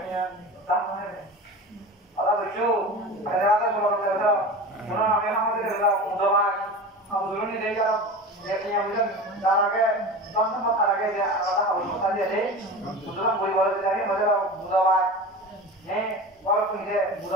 নিয়ে দাম মানে আলা বুঝছো আরে রাতে বলে দাও পুরো আমি আমাদের দাও উদমান আন্দোলন দিয়ে যাও দেখি আমরা তার আগে দশম তার আগে যে আলাদা কথা দিয়ে দেই সুতরাং বই বলতে যাই মজা বুধবার হ্যাঁ বড় করে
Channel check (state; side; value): normal; both; correlation 0.31